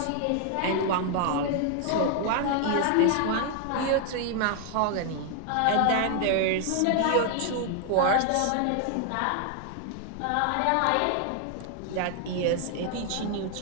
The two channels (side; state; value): both; different; correlation 0.00